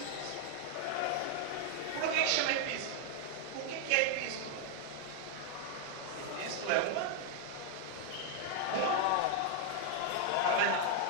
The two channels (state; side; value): different; both; correlation 0.00